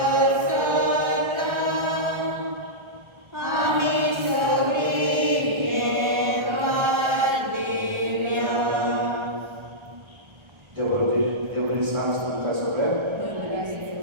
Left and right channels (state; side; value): late; left; 1.3 ms